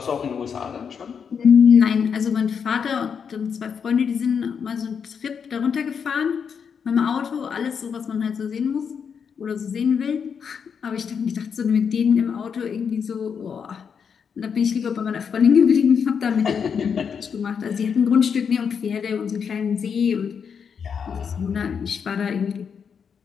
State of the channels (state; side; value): quieter; right; 6.7 dB